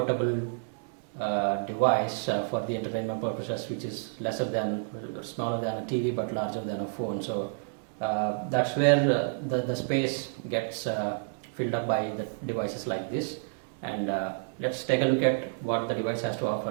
device for the entertainment purposes, which is smaller than a TV but larger than a phone. So that's where the space gets filled up by the devices like this. And let's take a look at what the device has to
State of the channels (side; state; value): left; silent; 58 dB below the other